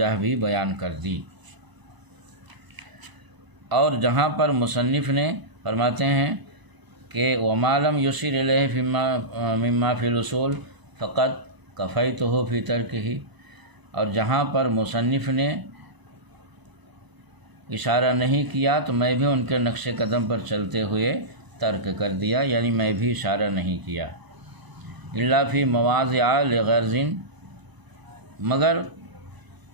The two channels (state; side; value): late; left; 1.0 ms